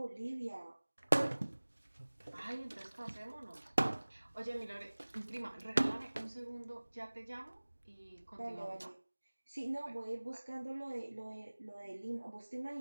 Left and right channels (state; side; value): inverted; both; correlation -1.00